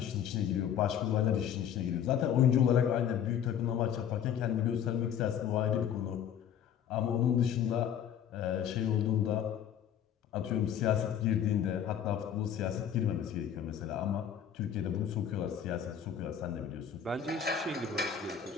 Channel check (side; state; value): right; quieter; 9.0 dB